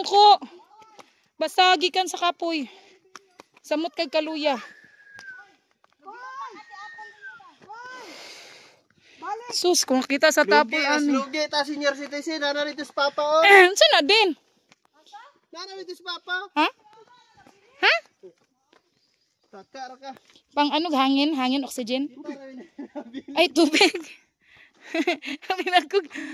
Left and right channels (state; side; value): identical; both; correlation 1.00